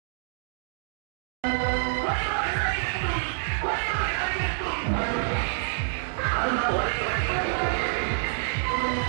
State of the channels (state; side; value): silent; left; digital silence